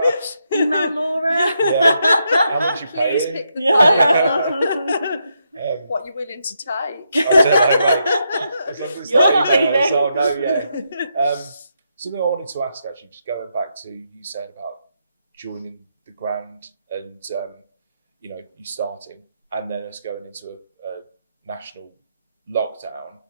Email Laura. How much you paying? Please pick the phone. What you're willing to take. I don't know, mate. As long as it's not emails, I'll know, something I wanted to ask, actually, just going back to you saying about joining the Grand and, you starting and then us going into a national lockdown.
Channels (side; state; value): both; inverted; correlation -0.81